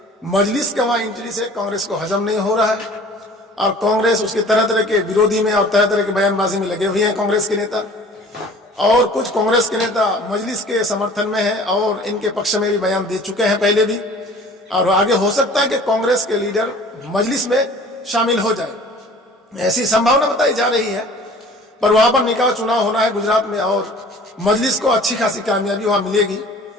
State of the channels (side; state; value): both; normal; correlation 0.48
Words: मजलिस के वहां एंट्री से कांग्रेस को हजम नहीं हो रहा है और कांग्रेस उसके तरह तरह के विरोधी में और तरह तरह के बयानबाजी में लगे हुए हैं कांग्रेस के नेता। और कुछ कांग्रेस के नेता मजलिस के समर्थन में हैं और इनके पक्ष में भी बयान दे चुके हैं पहले भी, और आगे हो सकता है कि कांग्रेस के लीडर मजलिस में शामिल हो जाए, ऐसी संभावना बताई जा रही है। पर वहां पर निकाय चुनाव होना है गुजरात में और मजलिस को अच्छी खासी कामयाबी वहां मिलेगी,